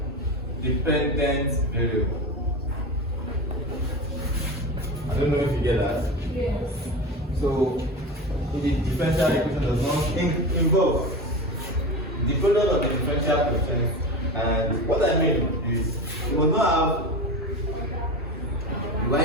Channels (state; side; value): normal; both; correlation 0.26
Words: Dependent variable. I don't know if you get that. Yes. So the differential equation does not involve the product of the differential quotient, and what I mean is you will not have